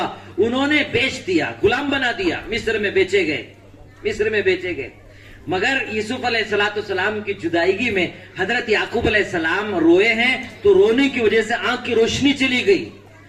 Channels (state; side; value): identical; both; correlation 1.00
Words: انہوں نے بیچ دیا، غلام بنا دیا، مصر میں بیچے گئے، مصر میں بیچے گئے. مگر یوسف علیہ السلام کی جدائیگی میں حضرت یعقوب علیہ السلام روئے ہیں تو رونے کی وجہ سے آنکھ کی روشنی چلی گئی.